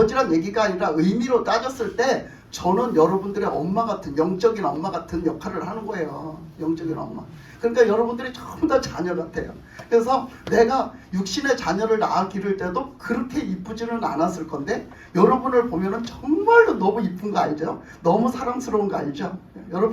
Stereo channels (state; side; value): identical; both; correlation 1.00